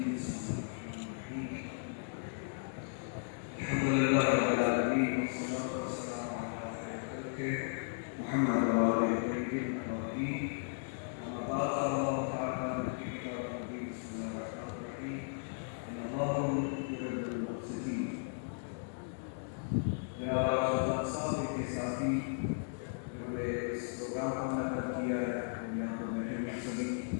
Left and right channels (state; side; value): silent; right; digital silence